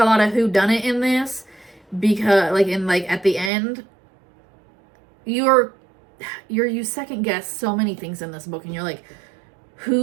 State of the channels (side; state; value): left; drops out; at 3.5 s